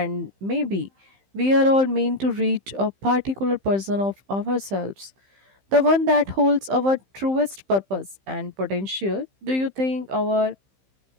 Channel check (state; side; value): late; left; 15 ms